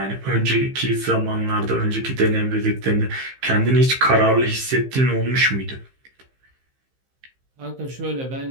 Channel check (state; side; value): late; left; 15 ms